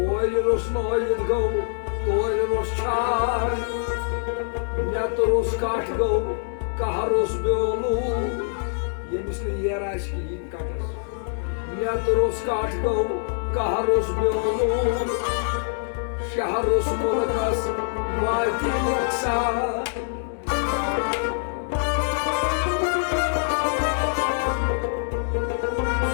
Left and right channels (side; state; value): right; silent; digital silence